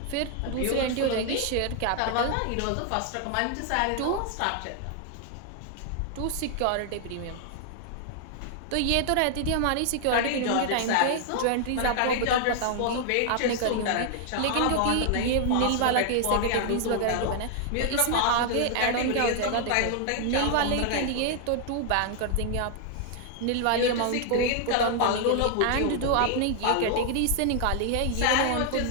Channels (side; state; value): both; different; correlation 0.00